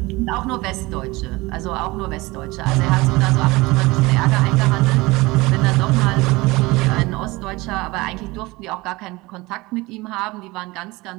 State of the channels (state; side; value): quieter; left; 21.9 dB